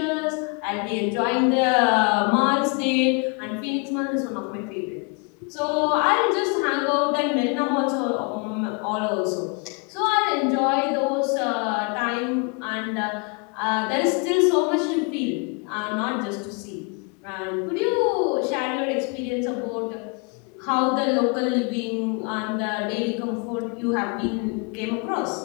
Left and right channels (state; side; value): quieter; right; 33.0 dB